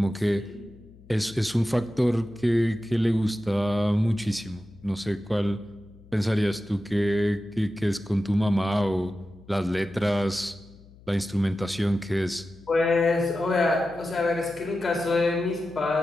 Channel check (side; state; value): left; noise; hum, 23 dB below the sound